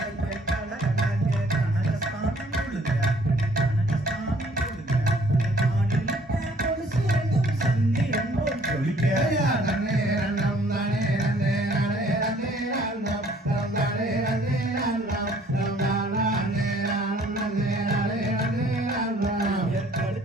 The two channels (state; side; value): normal; both; correlation 0.59